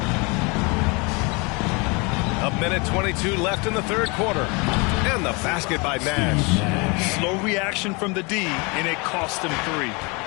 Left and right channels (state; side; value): quieter; right; 29.2 dB